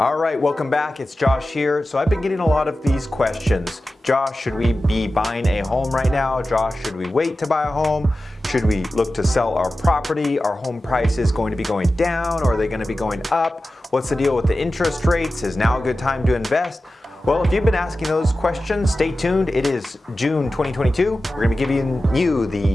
All right, welcome back. It's Josh here. So I've been getting a lot of these questions. Josh, should we be buying a home right now? Josh, should we wait to buy a home? Should we look to sell our property? Are home prices going to be going down or are they going to be going up? What's the deal with the interest rates? Is now a good time to invest? Well, if you've been asking those questions, stay tuned. It is June 2022. We're going to be giving you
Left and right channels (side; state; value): both; normal; correlation 0.94